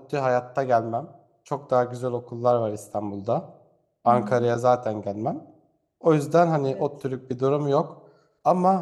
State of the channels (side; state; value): both; identical; correlation 1.00